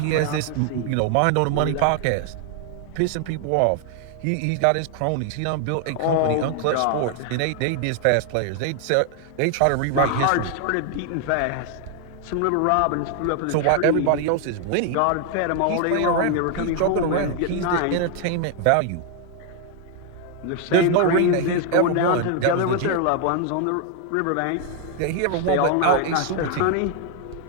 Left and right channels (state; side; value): different; both; correlation 0.00